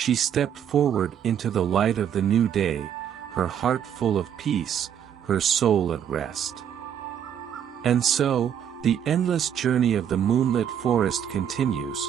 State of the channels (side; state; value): left; quieter; 9.1 dB